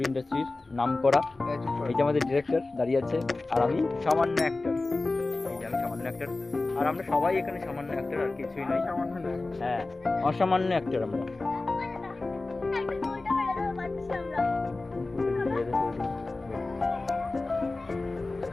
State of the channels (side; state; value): right; quieter; 3.3 dB